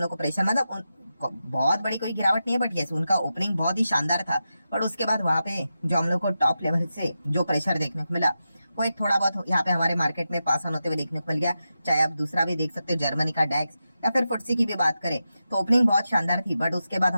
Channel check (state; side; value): inverted; both; correlation -0.90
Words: को प्रेशर, मतलब बहुत बड़ी कोई गिरावट नहीं है, बट यस उनका ओपनिंग बहुत ही शानदार था। बट उसके बाद वहां पे जो हम लोग को टॉप लेवल से जो प्रेशर देखने को मिला वो एक थोड़ा बहुत यहाँ पे हमारे मार्केट में पास ऑन होते हुए देखने को मिल गया। चाहे आप दूसरा भी देख सकते हो, जर्मनी का डैक्स या फिर फुटसी की भी बात करें तो ओपनिंग बहुत शानदार थी, बट उसके बाद